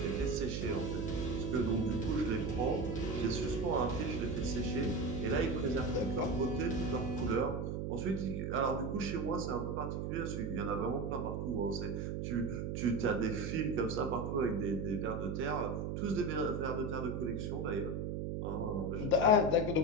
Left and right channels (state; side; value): noise; right; hum, 2 dB below the sound